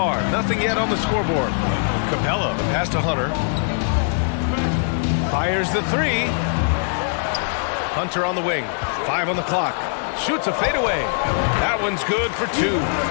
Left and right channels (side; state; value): right; silent; digital silence